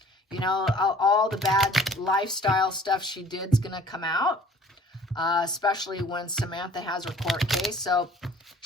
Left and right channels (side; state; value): both; normal; correlation 0.52